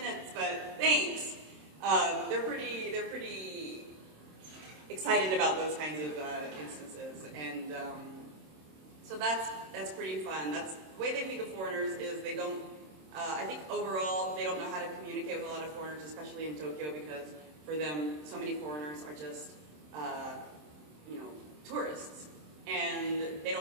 but thanks." They're pretty excited about those kinds of instances, and so that's pretty fun. That's the way they think of foreigners is they don't. I think overall they don't know how to communicate with a lot of foreigners, especially in Tokyo, because for them so many foreigners are just tourists, and they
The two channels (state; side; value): late; left; 26 ms